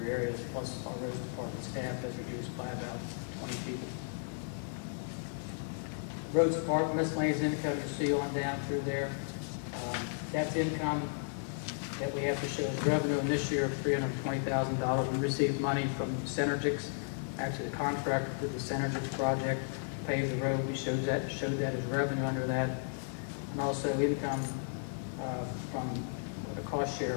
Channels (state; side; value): silent; right; digital silence